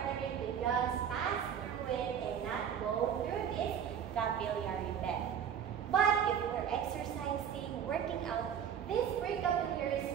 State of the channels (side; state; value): left; quieter; 8.4 dB